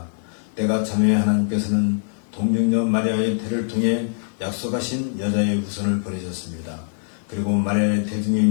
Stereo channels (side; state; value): right; silent; 58 dB below the other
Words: 때가 참에 하나님께서는 동정녀 마리아의 태를 통해 약속하신 여자의 후손을 보내셨습니다. 그리고 마리아의 태중에